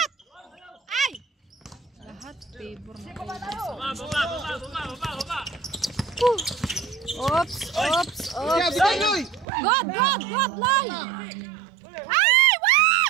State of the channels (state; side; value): drops out; left; at 9.5 s